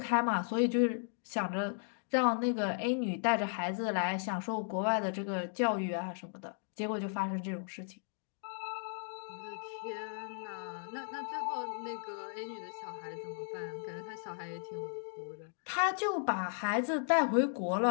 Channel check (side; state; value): right; silent; digital silence